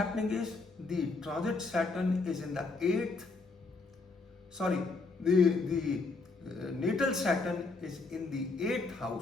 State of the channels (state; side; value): quieter; right; 3.8 dB